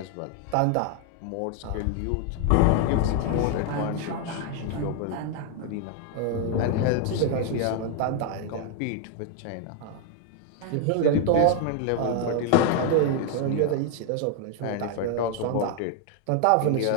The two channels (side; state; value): both; different; correlation 0.00